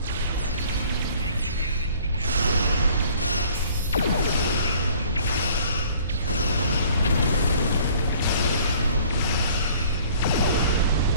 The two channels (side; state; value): both; inverted; correlation -0.53